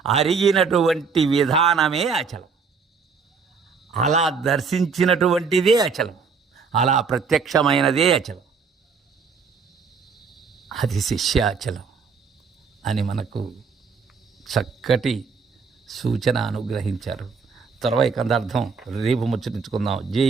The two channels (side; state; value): left; quieter; 5.4 dB